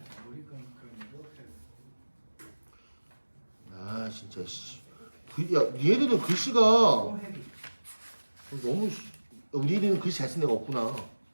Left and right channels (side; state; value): both; inverted; correlation -1.00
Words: 아 진짜 씨. 야 얘들은 글씨가 너무 우리 애들은 글씨 잘 쓰는 애가 없구나.